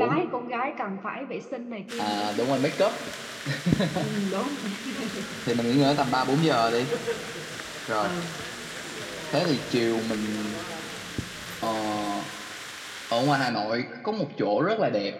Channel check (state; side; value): identical; both; correlation 1.00